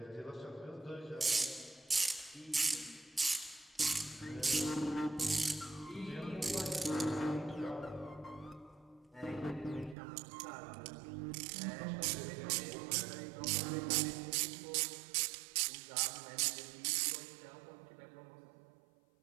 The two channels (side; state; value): left; drops out; at 10.0 s